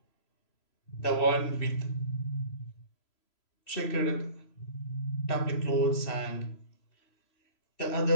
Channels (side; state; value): right; late; 3.0 ms